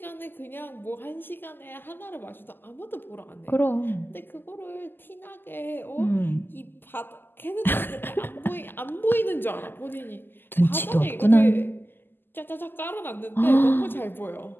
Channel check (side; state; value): right; late; 0.095 ms